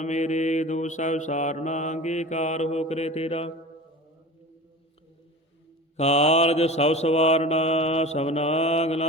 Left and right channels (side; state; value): both; normal; correlation 0.34